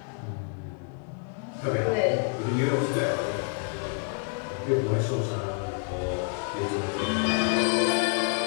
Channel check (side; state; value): right; quieter; 39.8 dB